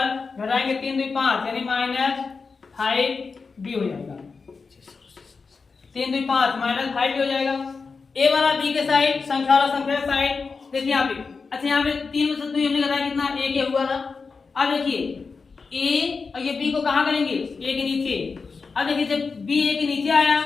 घटाएंगे 3 2 5 यानी माइनस 5b हो जाएगा। 3 2 5 माइनस 5b हो जाएगा। a वाला b के साइड संख्या वाला संख्या के साइड देखिए यहाँ पे। अच्छा यहाँ पे 3 में से 2 हमने घटाया कितना a के हुआ था। अब देखिए a और ये b को कहाँ करेंगे a के नीचे। अब देखिए जब b a के नीचे आया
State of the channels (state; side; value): quieter; right; 4.7 dB